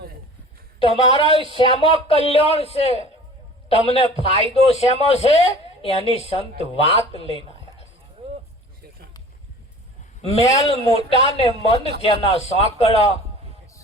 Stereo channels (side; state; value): both; normal; correlation 0.44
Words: તમારા શેમાં કલ્યાણ છે, તમને ફાયદો શેમાં છે, એની સંત વાત લઈને આવ્યા છે. મેલ મોટા ને મન જેના સાંકળા,